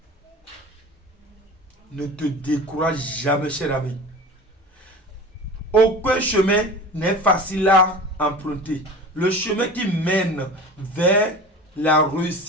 Ne te décourage jamais, cher ami. Aucun chemin n'est facile à emprunter. Le chemin qui mène vers la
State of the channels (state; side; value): normal; both; correlation 0.36